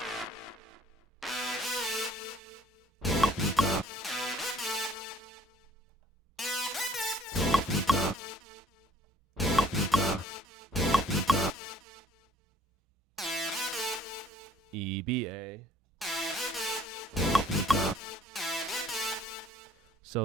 E, B, A.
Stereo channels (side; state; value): both; normal; correlation 0.59